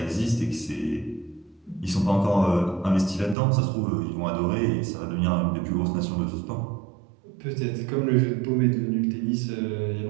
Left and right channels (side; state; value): left; drops out; at 3.4 s